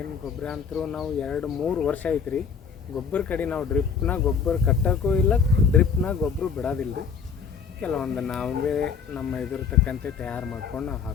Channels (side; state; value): right; quieter; 6.3 dB